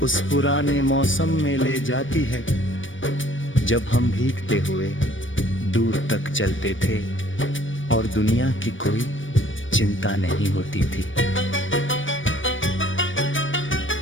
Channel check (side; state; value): right; late; 0.56 ms